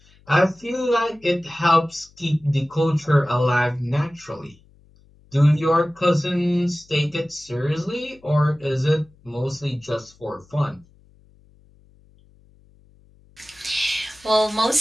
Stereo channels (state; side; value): noise; left; hum, 29 dB below the sound